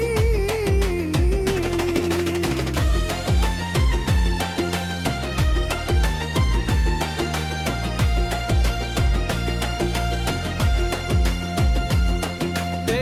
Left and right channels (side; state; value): both; identical; correlation 1.00